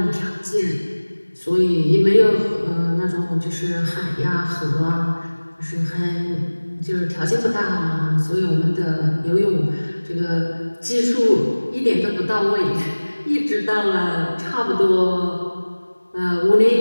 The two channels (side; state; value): both; inverted; correlation -1.00